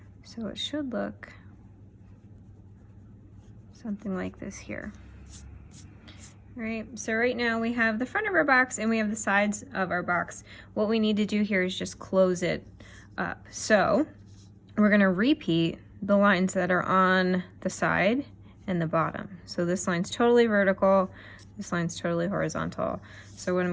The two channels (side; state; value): both; identical; correlation 1.00